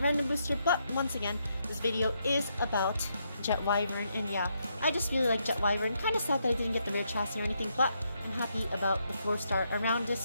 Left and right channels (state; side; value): inverted; both; correlation -0.78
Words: booster. But once again, this video is about Jet Wyvern, and yeah, I just really like Jet Wyvern. Kind of sad that I didn't get the rare chassis or anything, but I'm happy about the 4-star around